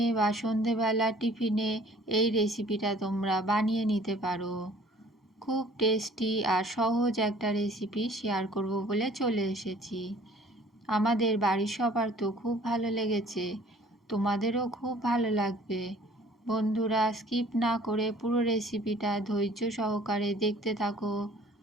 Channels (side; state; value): both; normal; correlation 0.53